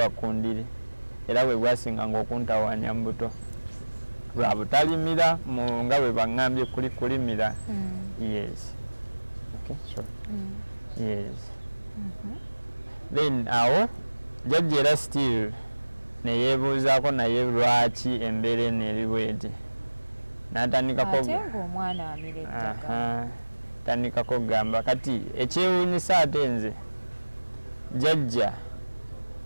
ku ndiri era bwe gwasinga ng'okuntawanya mu buto lwa butalimira nga bwe baŋŋambye kulimira yes okay sure yes then awo jjajja era still ne yeebuuzaako naye lwaki embeera eno eri bweti n'atandikako tandikako gamba kati ekyewuunyisa ate nze jjajja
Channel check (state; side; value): inverted; both; correlation -1.00